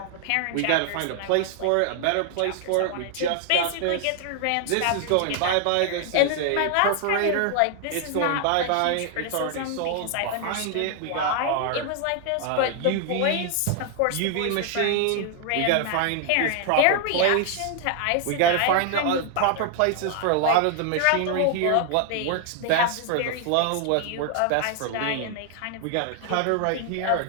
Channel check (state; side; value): different; both; correlation 0.00